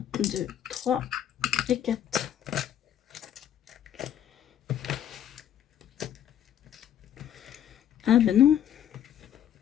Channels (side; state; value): right; quieter; 10.3 dB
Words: 2, 3 et 4. Ah ben non.